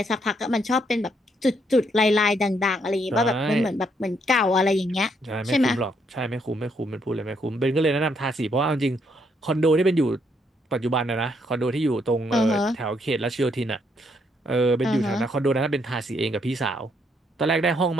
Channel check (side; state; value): both; normal; correlation 0.73